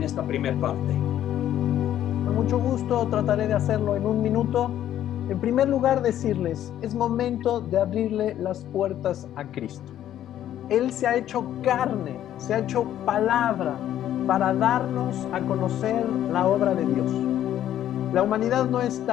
esta primera parte. Con mucho gusto trataré de hacerlo en un minuto. En primer lugar, decirles, es momento de abrirle las puertas a Cristo. Él se ha hecho carne, se ha hecho palabra para darnos a conocer la obra de Dios. La humanidad no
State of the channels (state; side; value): quieter; right; 11.6 dB